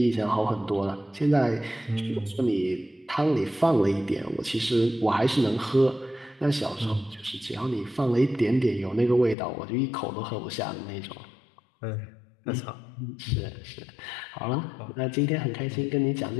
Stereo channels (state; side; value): drops out; right; at 9.3 s